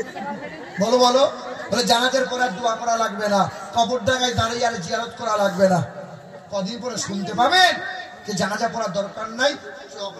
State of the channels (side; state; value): both; identical; correlation 1.00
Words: বলো বলো, বলে জানাজার পর আর দোয়া করা লাগবে না, কবর ডাঙায় দাঁড়িয়ে আর জিয়ারত করা লাগবে না। কদিন পরে শুনতে পাবেন যে জানাজা পড়ার দরকার নাই,